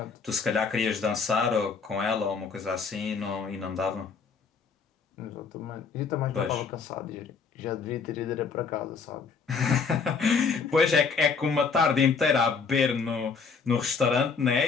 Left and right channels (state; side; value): quieter; right; 5.3 dB